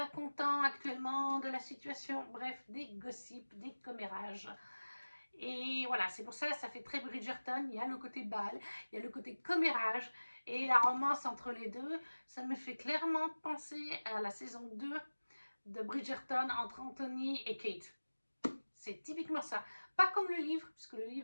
content actuellement de la situation, bref, des gossips, des commérages. Et voilà, c'est pour ça que ça fait très Bridgerton, il y a le côté bal, il y a le côté commérage, et la romance entre les deux, ça me fait clairement penser à la saison 2 de Bridgerton entre Anthony et Kate. C'est typiquement ça. Pas comme le livre, puisque le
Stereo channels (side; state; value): both; inverted; correlation -1.00